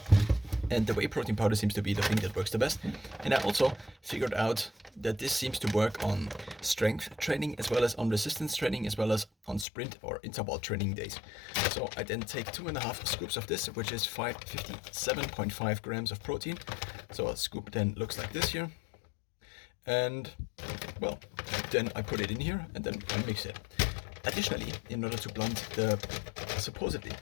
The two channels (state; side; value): drops out; right; at 9.7 s